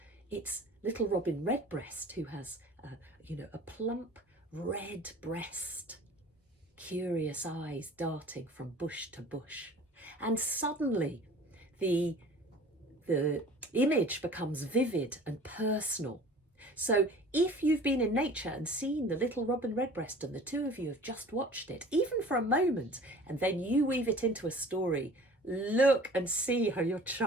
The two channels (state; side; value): normal; both; correlation 0.45